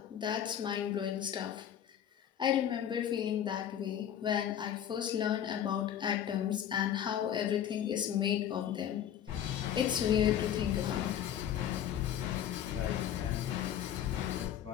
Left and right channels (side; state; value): right; quieter; 10.0 dB